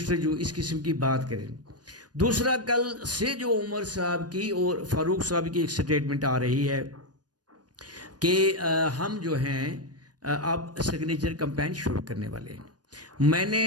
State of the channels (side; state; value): left; late; 0.69 ms